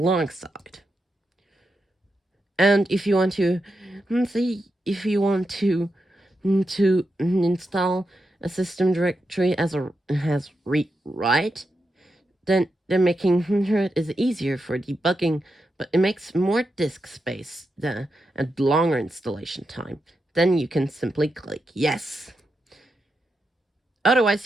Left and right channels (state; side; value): normal; both; correlation 0.86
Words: And if you want to install a system directory as read-write, then making it is easier for debugging, but it makes more disk space and longer installation time. Then you can simply click yes. Otherwise,